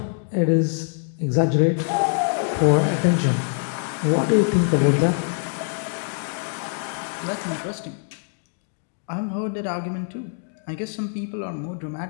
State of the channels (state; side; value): silent; right; 63 dB below the other